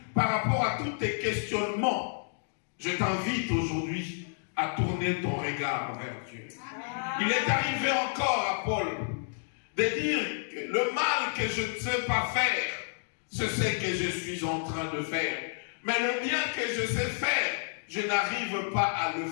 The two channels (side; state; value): right; silent; digital silence